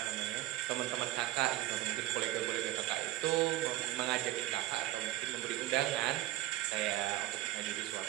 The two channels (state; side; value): quieter; left; 15.7 dB